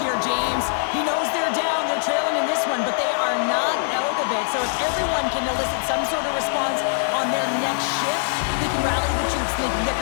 James. He knows they're down, they're trailing in this one, but they are not out of it. So if everyone can elicit some sort of response on their next shift, they can rally the troops and they can get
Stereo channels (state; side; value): silent; right; digital silence